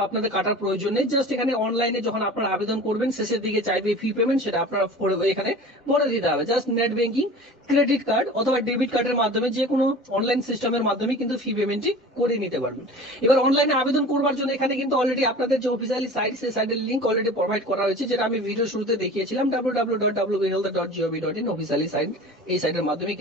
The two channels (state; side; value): normal; both; correlation 0.39